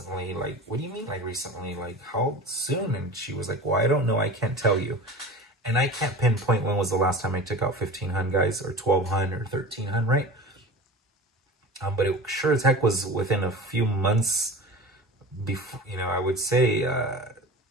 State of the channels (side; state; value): both; normal; correlation 0.34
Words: Like, what do you mean, like, recently? Like, how soon? And she was like, well, I don't know. I can't tell you. And I can't pinpoint when was the last time I took out 1,500, guys, or 1,200 or 1,300, right? But it sure as heck was within a few months before, you know, I would say